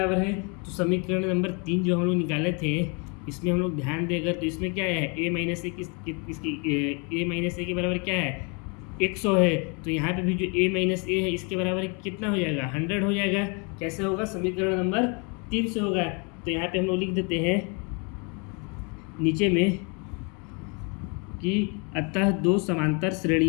है, तो समीकरण नंबर 3 जो हम लोग निकाले थे इसमें हम लोग ध्यान देकर, तो इसमें क्या है a minus a a minus a के बराबर क्या है 100 है। तो यहाँ पे भी जो a माइनस a है इसके बराबर कितना हो जाएगा 100 हो जाएगा। कैसे होगा, समीकरण नंबर 3 से होगा। तो यहाँ पे हम लोग लिख देते हैं नीचे में कि अतः दो समांतर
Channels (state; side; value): quieter; right; 33.6 dB